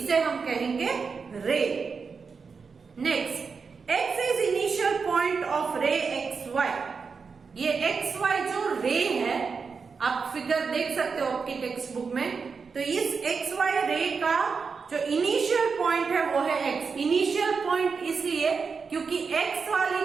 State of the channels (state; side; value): quieter; left; 5.3 dB